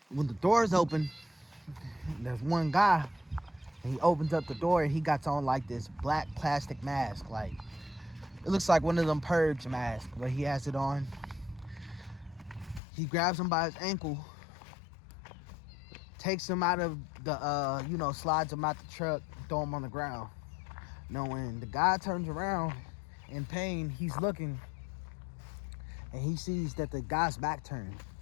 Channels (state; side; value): drops out; right; at 12.8 s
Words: When the doors open, there's one guy, and he opens up the door, and he got on like this black plastic mask. Like, it looks like one of them purge masks, but he has it on. He grabs him by his ankle, takes him out of the, slides him out the truck, throw him on the ground. Now, when the guy turns around in pain, he's looking, and he sees that the guy's back turned.